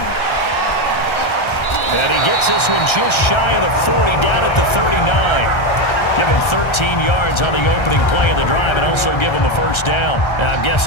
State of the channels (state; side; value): late; right; 1.3 ms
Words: And he gets this one just shy of the 40, down at the 39. Give him 13 yards on the opening play of the drive and also give him a first down. Now, I'm